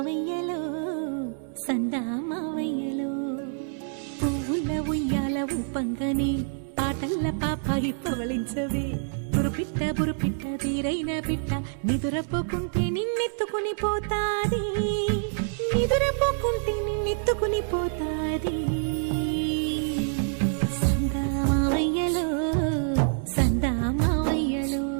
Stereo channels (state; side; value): silent; left; 60 dB below the other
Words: సందామావయ్యలో పువ్వుల ఉయ్యాల ఊపంగని పాటల్ల పాపాయి పవళించవే బురుపిట్ట తీరైన పిట్ట నిదురపోకుంటే నిన్నెత్తుకుని పోతాది నిదురపోకుంటే నిన్నెత్తుకుని పోతాది సందామావయ్యలో సందామావయ్యలో